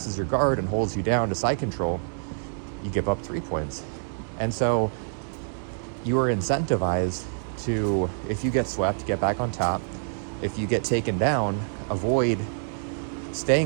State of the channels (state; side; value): silent; left; digital silence